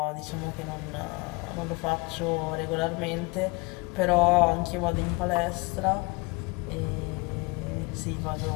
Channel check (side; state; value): right; quieter; 26.9 dB